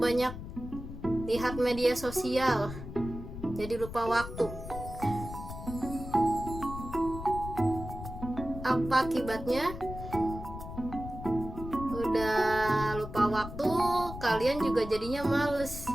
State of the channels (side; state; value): left; noise; rumble, 10 dB below the sound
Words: lihat media sosial, jadi lupa waktu. Apa akibatnya? Udah lupa waktu, kalian juga jadinya males